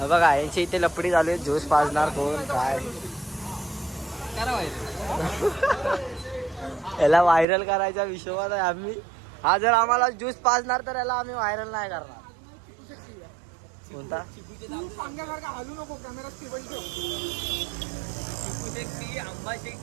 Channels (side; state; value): left; drops out; at 7.5 s